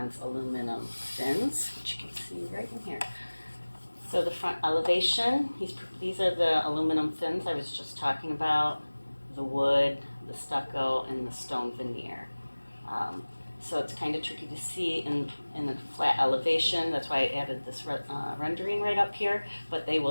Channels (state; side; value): inverted; both; correlation -1.00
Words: aluminum fins, which you can see right in here. So the front elevation, these are the aluminum fins I was just talking about, the wood, the stucco, and the stone veneer. So it's kind of tricky to see in a flat elevation. That's why I added this rendering right up here. But they